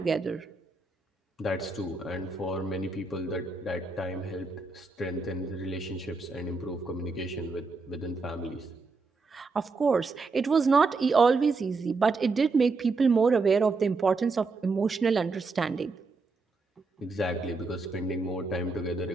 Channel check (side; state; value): left; quieter; 3.9 dB